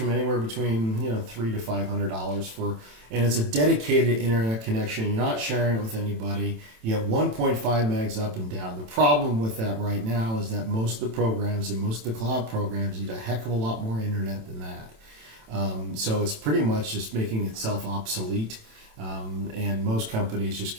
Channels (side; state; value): left; late; 27 ms